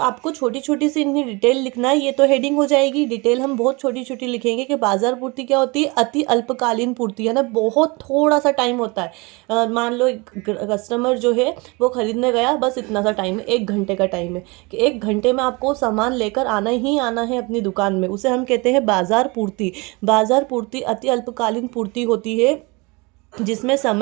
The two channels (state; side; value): quieter; left; 26.8 dB